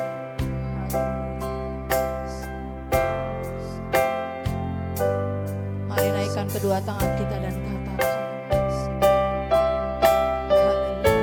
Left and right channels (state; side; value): identical; both; correlation 1.00